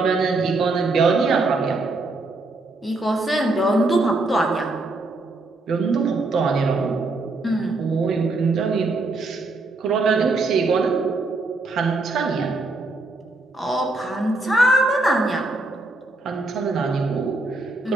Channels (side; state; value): left; quieter; 3.1 dB